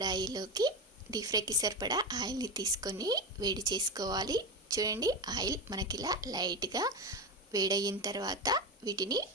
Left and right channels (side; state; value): both; normal; correlation 0.18